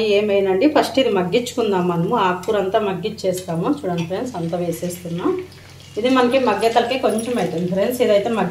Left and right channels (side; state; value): both; identical; correlation 1.00